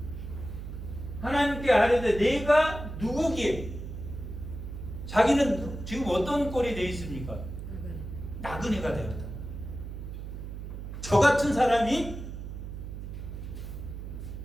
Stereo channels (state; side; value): noise; right; hum, 8 dB below the sound